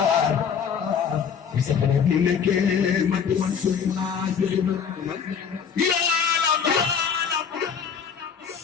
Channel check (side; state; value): right; quieter; 6.9 dB